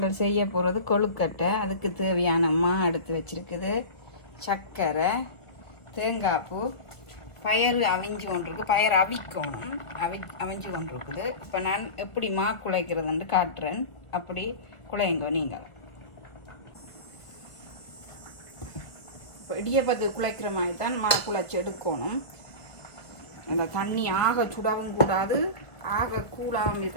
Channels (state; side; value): late; right; 1.5 ms